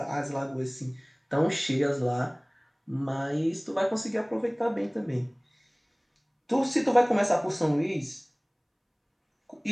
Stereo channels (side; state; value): both; identical; correlation 1.00